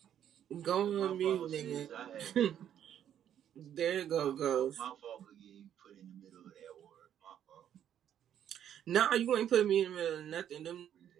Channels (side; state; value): left; quieter; 10.0 dB